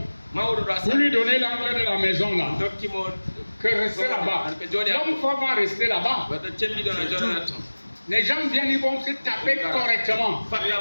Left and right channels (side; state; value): both; inverted; correlation -1.00